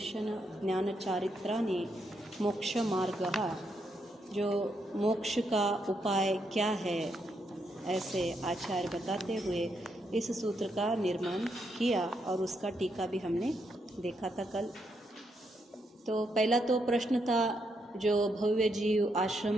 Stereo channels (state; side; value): normal; both; correlation 0.79